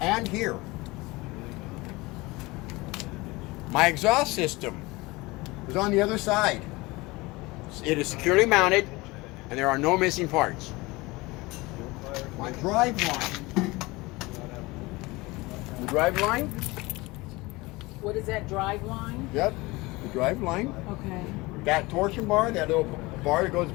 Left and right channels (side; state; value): right; quieter; 22.4 dB